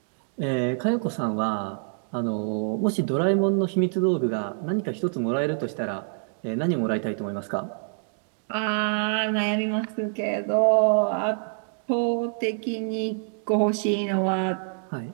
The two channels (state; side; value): silent; left; 61 dB below the other